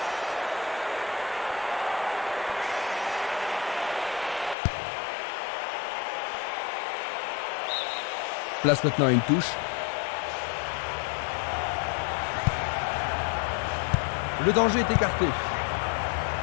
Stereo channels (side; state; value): right; drops out; at 4.5 s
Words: Place maintenant à une touche. Le danger est écarté.